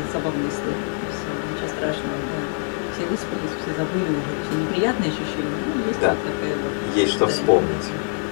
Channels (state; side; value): silent; right; 57 dB below the other